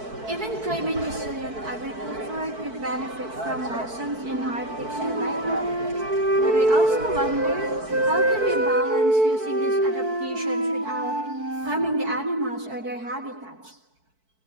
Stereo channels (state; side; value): late; left; 4.6 ms